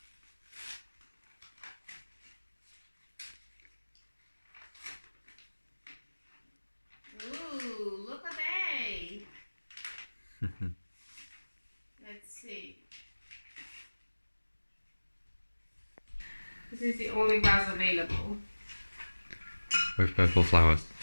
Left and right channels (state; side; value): inverted; both; correlation -1.00